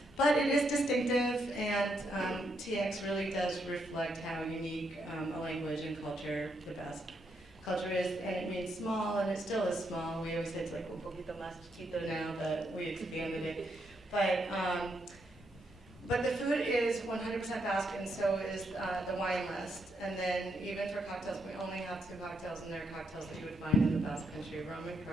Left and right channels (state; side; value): normal; both; correlation 0.78